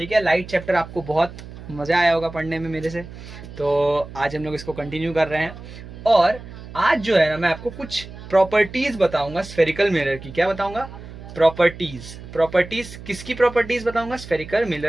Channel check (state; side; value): noise; right; hum, 14 dB below the sound